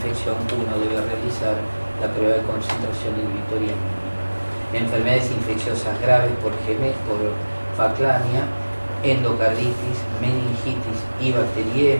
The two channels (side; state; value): both; inverted; correlation -1.00